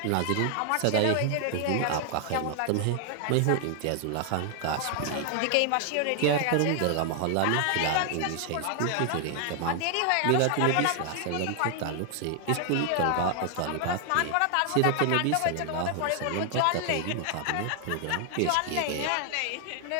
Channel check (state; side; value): different; both; correlation 0.00